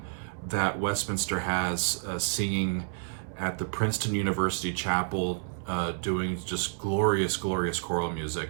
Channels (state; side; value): silent; left; 58 dB below the other